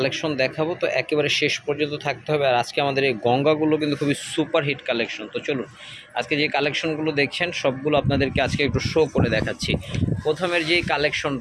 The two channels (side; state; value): both; identical; correlation 1.00